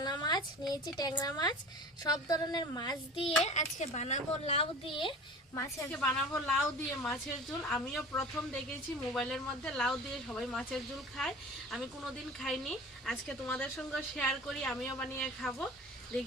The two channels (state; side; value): normal; both; correlation 0.39